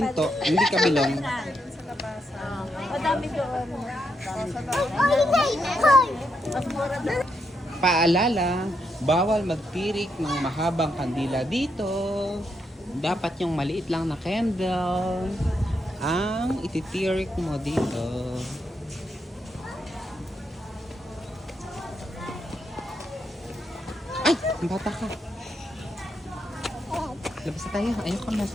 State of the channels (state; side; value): normal; both; correlation 0.80